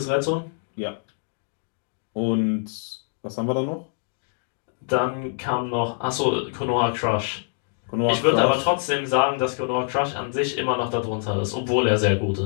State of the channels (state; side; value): silent; right; digital silence